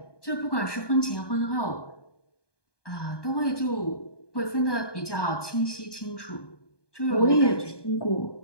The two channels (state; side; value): late; right; 1.2 ms